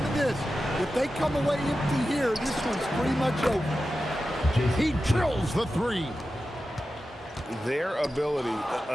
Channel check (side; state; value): both; normal; correlation 0.92